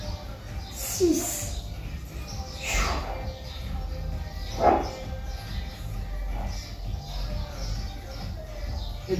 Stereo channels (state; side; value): identical; both; correlation 1.00